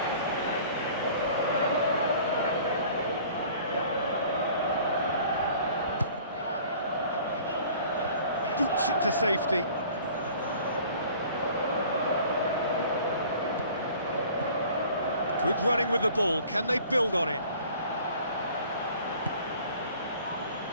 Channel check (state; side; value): inverted; both; correlation -0.50